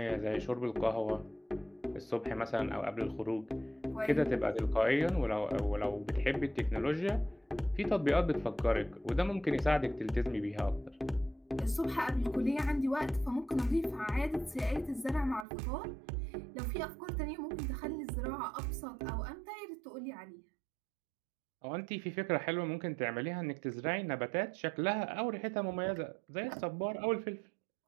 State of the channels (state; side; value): drops out; left; at 15.5 s